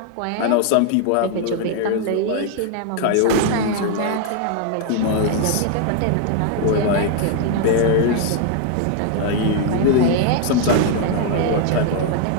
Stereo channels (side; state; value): both; different; correlation 0.00